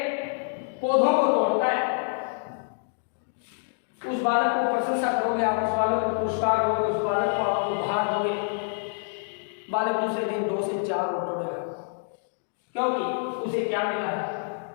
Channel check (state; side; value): silent; right; digital silence